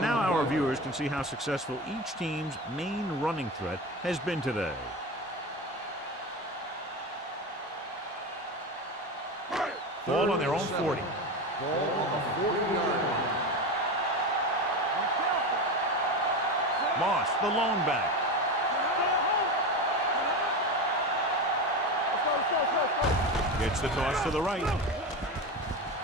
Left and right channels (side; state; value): both; normal; correlation 0.22